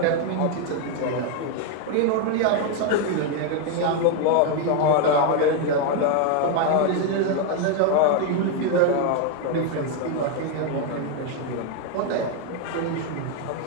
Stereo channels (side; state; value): both; different; correlation 0.01